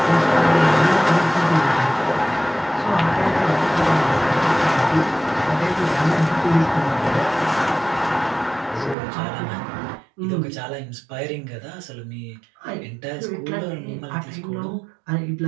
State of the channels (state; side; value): drops out; left; at 9.0 s